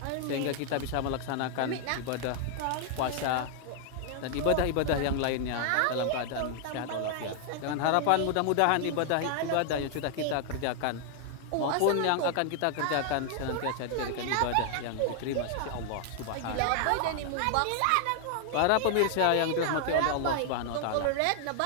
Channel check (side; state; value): both; different; correlation 0.00